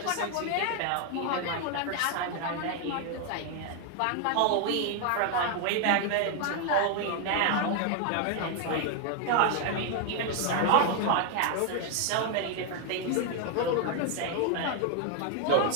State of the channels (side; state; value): both; different; correlation 0.00